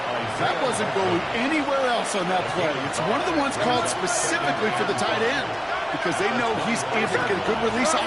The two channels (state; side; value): identical; both; correlation 1.00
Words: That wasn't going anywhere else on that play. It's one of the ones called specifically for the tight end because they know he's able to get a good release